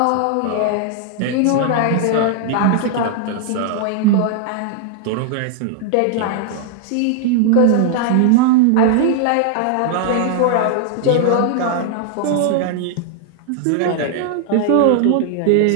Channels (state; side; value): different; both; correlation 0.00